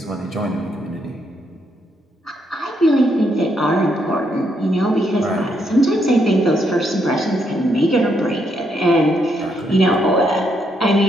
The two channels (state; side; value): normal; both; correlation 0.76